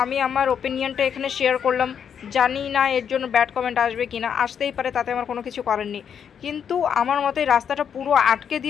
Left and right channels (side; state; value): right; quieter; 7.8 dB